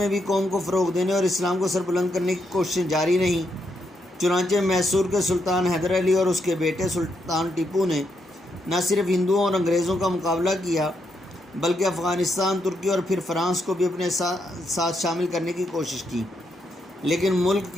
بھی قوم کو فروغ دینے اور اسلام کو سربلند کرنے کی کوششیں جاری رہیں۔ چنانچہ میسور کے سلطان حیدر علی اور اس کے بیٹے سلطان ٹیپو نے نہ صرف ہندوؤں اور انگریزوں کا مقابلہ کیا، بلکہ افغانستان، ترکی اور پھر فرانس کو بھی اپنے ساتھ شامل کرنے کی کوشش کی، لیکن ملک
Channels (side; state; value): both; normal; correlation 0.79